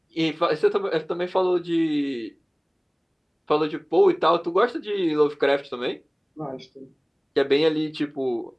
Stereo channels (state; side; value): identical; both; correlation 1.00